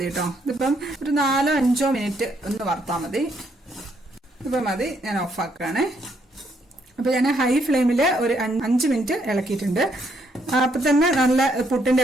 കേട്ടോ. ഇതിപ്പം ഒരു 4-5 മിനിറ്റ് ഒന്ന് വറുത്താൽ മതി. ഇപ്പം മതി. ഞാൻ ഓഫാക്കുകയാണേ. അപ്പൊ ഞാൻ ഹൈ ഫ്ലെയിമിൽ ഒരു 5 മിനിറ്റ് ഇളക്കിയിട്ടുണ്ട്. അപ്പൊ തന്നെ നല്ല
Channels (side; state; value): both; normal; correlation 0.72